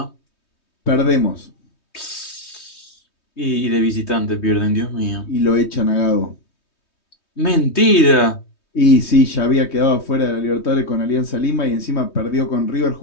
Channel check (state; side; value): late; right; 3.2 ms